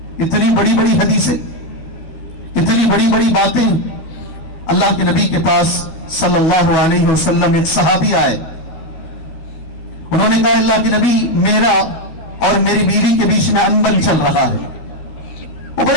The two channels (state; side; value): late; right; 13 ms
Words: اتنی بڑی بڑی حدیثیں, اتنی بڑی بڑی باتیں. اللہ کے نبی کے پاس صلی اللہ علیہ وسلم ایک صحابی آئے, انہوں نے کہا اللہ کے نبی میرا اور میری بیوی کے بیچ میں انبن چل رہا ہے, وہ